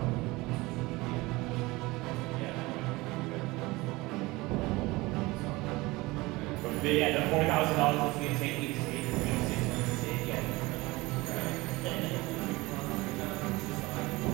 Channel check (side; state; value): left; quieter; 21.7 dB